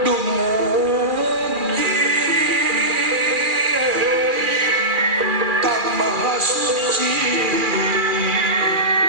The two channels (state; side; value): late; left; 2.4 ms